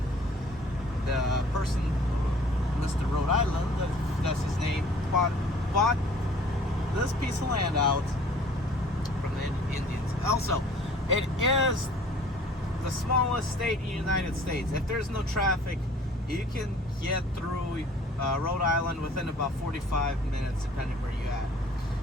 The person, Mr. Rhode Island, that's his name, bought this piece of land out from the Indians. Also, it is the smallest state in the United States. If there's no traffic, you can get through Rhode Island within about 45 minutes, depending where you're at.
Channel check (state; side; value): normal; both; correlation 0.52